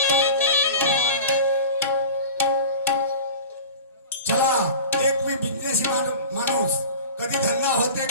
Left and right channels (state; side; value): inverted; both; correlation -0.35